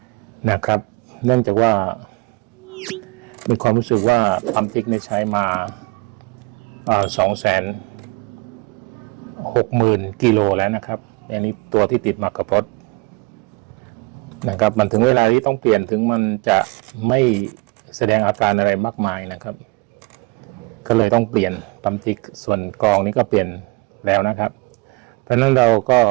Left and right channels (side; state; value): left; quieter; 26.8 dB